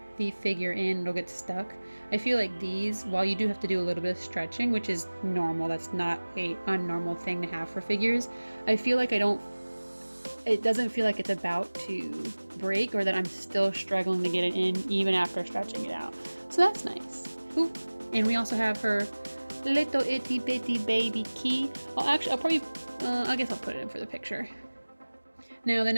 the figure in, it'll get stuck. I feel like these, while you do have to do a little bit of stretching, which is normal, that's not a unnormal thing to have for figures, I feel like it doesn't feel like it's about to break, or that I'm still struggling to get it in even after stretching it out. So that's nice. Ooh, and we also have her little itty bitty baby key. I guess I'll put it in for the picture. Now the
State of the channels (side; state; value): both; inverted; correlation -1.00